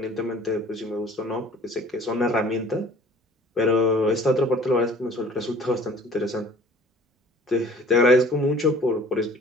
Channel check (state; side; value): normal; both; correlation 0.50